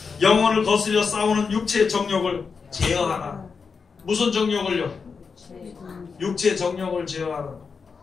영혼을 거스려 싸우는 육체의 정욕을 제어하라. 무슨 정욕을요? 육체의 정욕을 제어하라.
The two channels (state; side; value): quieter; right; 5.3 dB